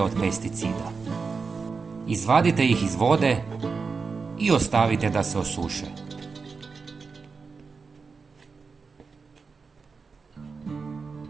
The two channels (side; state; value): left; quieter; 4.8 dB